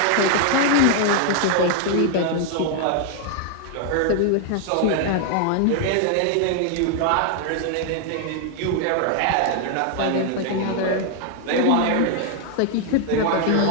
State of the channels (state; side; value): different; both; correlation 0.00